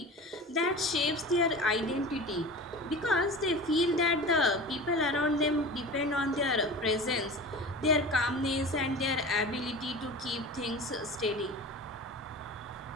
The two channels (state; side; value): normal; both; correlation 0.34